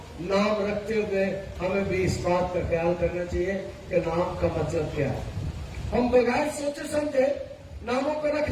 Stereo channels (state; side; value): identical; both; correlation 1.00